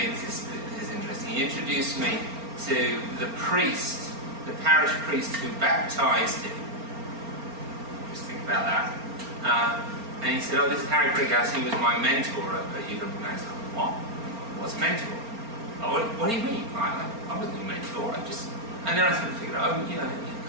This is interesting. He introduced me to the priest, the parish priest who baptized him. Just think about that. And he said, "Oh, this is Harry Brighouse. He was my mentor at UW Madison." What? What's mentor? Oh, what do you mean? I wasn't a mentor. And then I sort of figured, oh, you know, you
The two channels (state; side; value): late; left; 4.3 ms